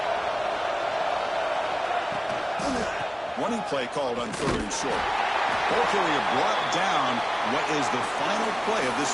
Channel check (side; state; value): both; identical; correlation 1.00